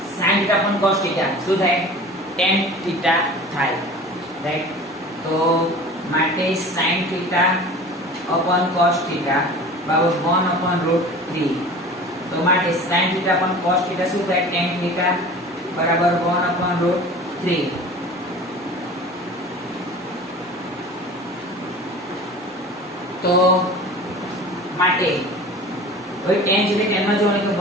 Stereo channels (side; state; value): both; normal; correlation 0.39